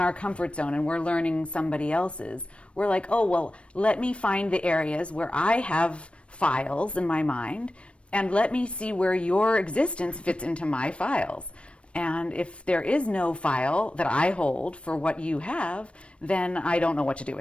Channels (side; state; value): right; late; 0.060 ms